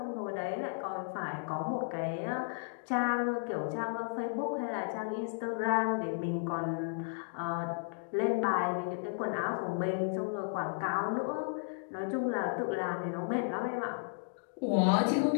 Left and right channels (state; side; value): silent; right; digital silence